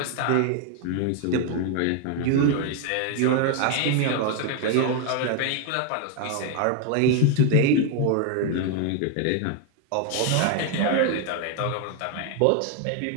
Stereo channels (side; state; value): both; different; correlation 0.01